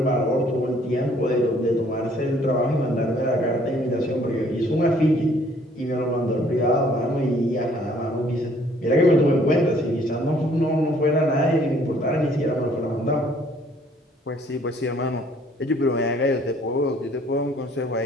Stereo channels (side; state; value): both; normal; correlation 0.60